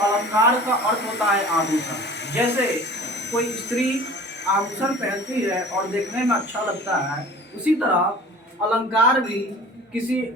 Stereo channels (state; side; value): normal; both; correlation 0.42